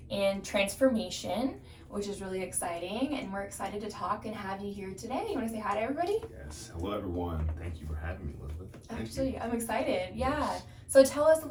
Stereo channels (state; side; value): identical; both; correlation 1.00